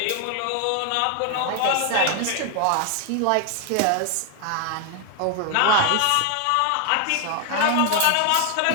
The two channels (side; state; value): both; different; correlation 0.01